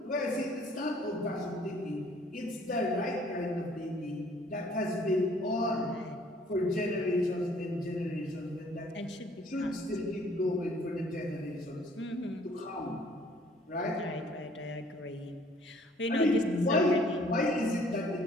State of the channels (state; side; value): normal; both; correlation 0.58